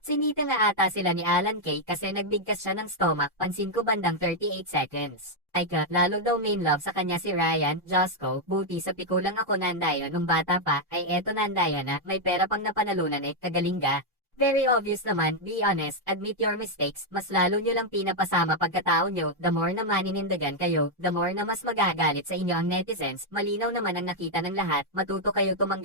Sinita nga ata sila ni Alan Kay kasi nagbigkas siya ng stomach, pansin ko bandang 38 seconds. Ay ka, lalo daw main love sa kanya si Ryan, Josco, buti sa pikulang ako Nandaya nung bata pa, ay eto Nandaya na, may pera pang napanalunan kagaling ga. Very obvious naman, be honest, admit your mistakes, mas lalo nyo lang pinapasama pagkatao nyo, the more na maninindagan kayo, the more na mas magagalit sa inyo ang netizens, malinaw naman ang nakita ng lahat, matuto kayo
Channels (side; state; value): both; normal; correlation -0.01